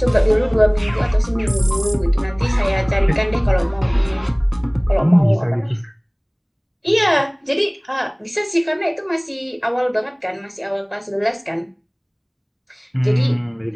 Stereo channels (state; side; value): identical; both; correlation 1.00